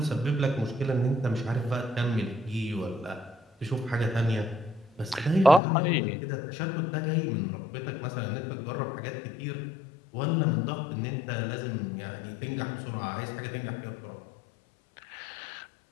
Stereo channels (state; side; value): drops out; right; at 5.6 s